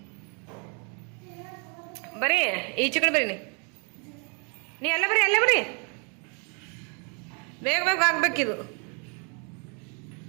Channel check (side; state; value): left; quieter; 36.5 dB